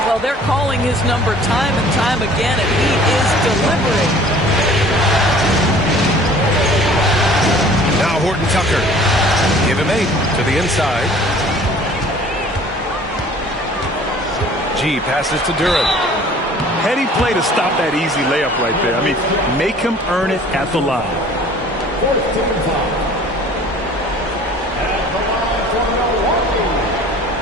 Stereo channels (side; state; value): both; normal; correlation 0.50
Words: Well, they're calling his number time and time again, and he is delivering. Now Horton Tucker. Give him 8 to the inside. G passes to Duran. Heady play to stop that easy layup right there. I mean, make him earn it at the line.